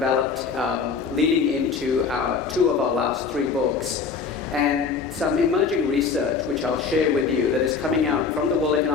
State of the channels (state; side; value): quieter; right; 5.3 dB